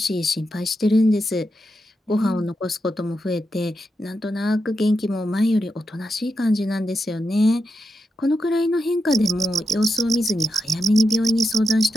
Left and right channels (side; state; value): both; normal; correlation 0.86